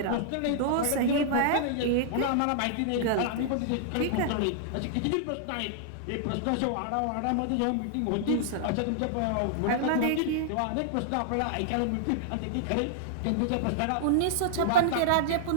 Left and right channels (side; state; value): both; different; correlation -0.01